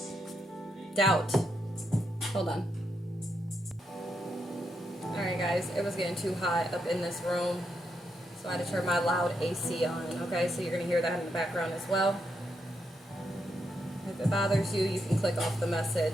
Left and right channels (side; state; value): both; normal; correlation 0.81